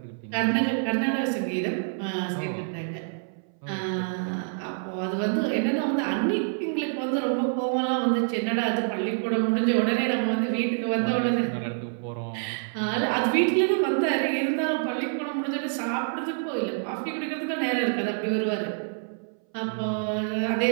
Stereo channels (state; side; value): silent; left; 60 dB below the other